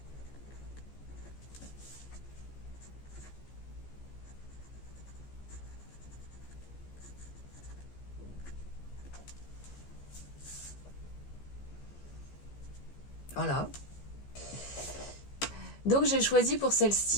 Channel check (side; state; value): right; late; 15 ms